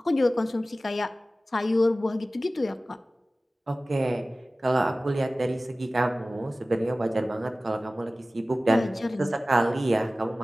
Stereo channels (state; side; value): normal; both; correlation 0.97